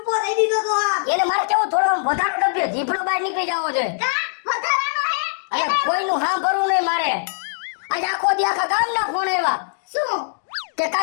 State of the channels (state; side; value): silent; right; digital silence